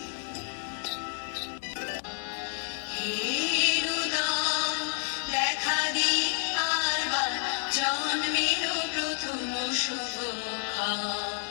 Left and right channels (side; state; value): right; silent; digital silence